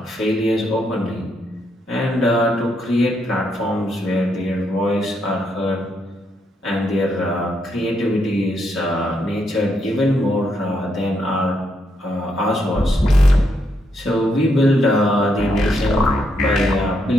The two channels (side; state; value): both; normal; correlation 0.78